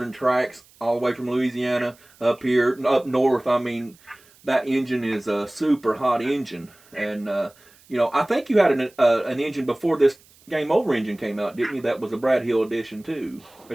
tracks all the way from Louisiana up here, up north. I mean, that engine is a super hot engine, and I think you had an engine before this Game Over engine came out, didn't you? That was a Brad Hill edition too.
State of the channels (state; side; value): noise; right; hiss, 28 dB below the sound